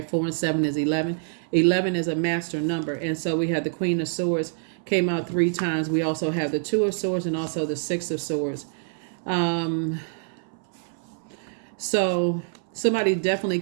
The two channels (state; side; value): silent; left; 61 dB below the other